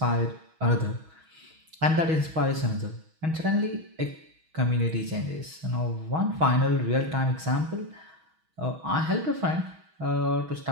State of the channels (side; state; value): left; late; 6.3 ms